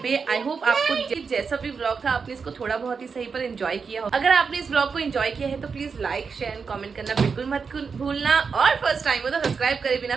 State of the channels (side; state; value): left; quieter; 5.4 dB